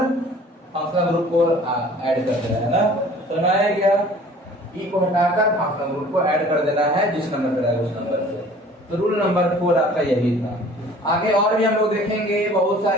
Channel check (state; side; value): normal; both; correlation 0.49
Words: फंक्शनल ग्रुप को ऐड कर देना है ना। सुना है क्या? ई को हटाकर फंक्शनल ग्रुप को ऐड कर देना है, जिस नंबर पर है उस नंबर से। तो रूल नंबर 4 आपका यही था। आगे और भी हम लोग देखेंगे बहुत